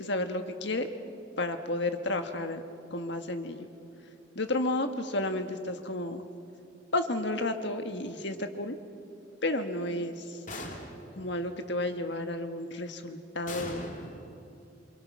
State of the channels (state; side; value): normal; both; correlation 0.05